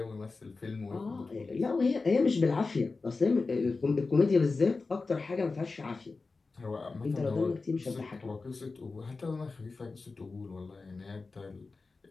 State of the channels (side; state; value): right; quieter; 4.0 dB